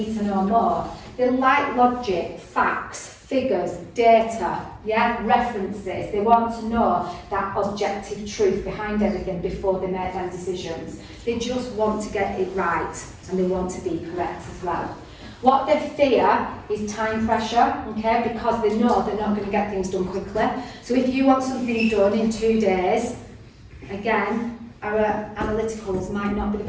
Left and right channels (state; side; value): identical; both; correlation 1.00